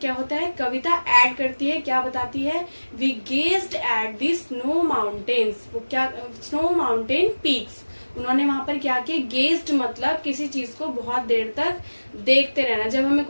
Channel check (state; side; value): inverted; both; correlation -1.00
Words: क्या होता है? कविता ऐड करती है. क्या बताती है? We gazed at the snow mountains. वो क्या? Snow mountain peaks. उन्होंने वहां पर क्या किया? गेज्ड मतलब किसी चीज को बहुत देर तक देखते रहना. जब हमें